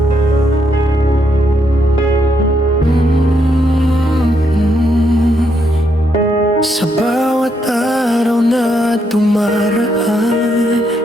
Sa bawat araw na dumaraan,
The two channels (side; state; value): both; normal; correlation 0.77